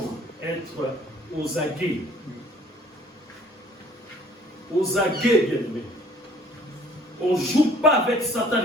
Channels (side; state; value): both; normal; correlation 0.56